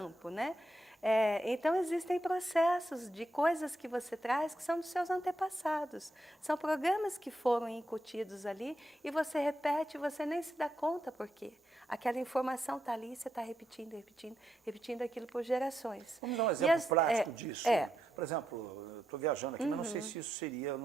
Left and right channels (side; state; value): both; normal; correlation 0.83